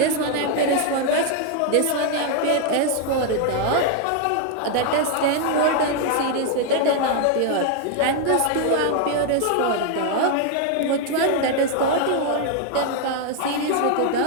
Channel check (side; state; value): both; different; correlation 0.00